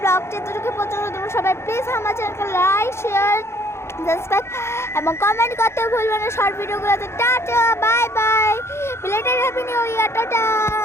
ব্লগটা এতটুকু পর্যন্ত। তোমরা সবাই প্লিজ আমার চ্যানেলকে লাইক, শেয়ার, সাবস্ক্রাইব এবং কমেন্ট করতে ভুলবে না শর্ট ভিডিওগুলোতে। Tata, bye bye, belated happy new year, tata.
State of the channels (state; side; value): late; right; 0.13 ms